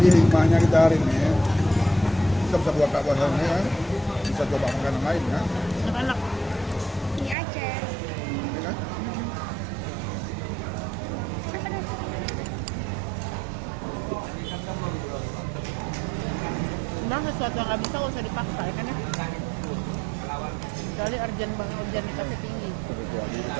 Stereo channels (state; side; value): drops out; left; at 7.4 s